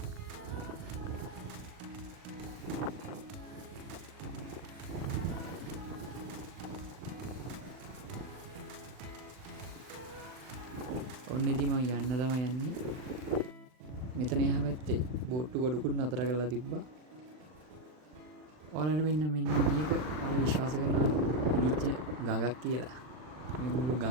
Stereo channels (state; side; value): late; left; 39 ms